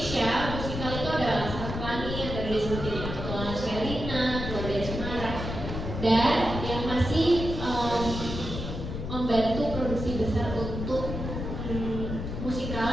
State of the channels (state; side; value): noise; left; rumble, 5 dB below the sound